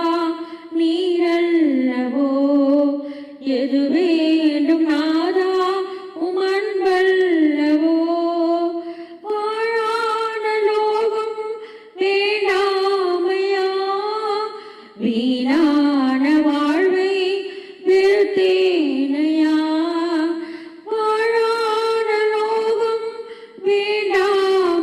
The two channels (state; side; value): identical; both; correlation 1.00